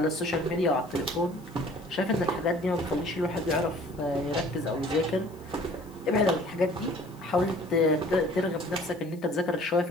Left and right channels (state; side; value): noise; left; hiss, 27 dB below the sound